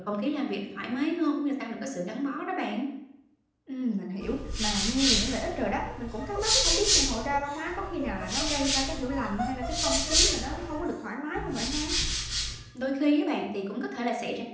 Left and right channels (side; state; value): both; identical; correlation 1.00